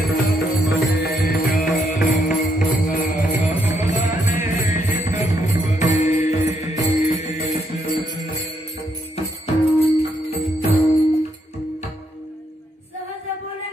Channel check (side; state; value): both; normal; correlation 0.76